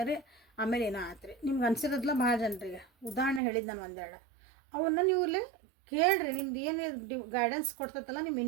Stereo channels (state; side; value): drops out; left; at 3.4 s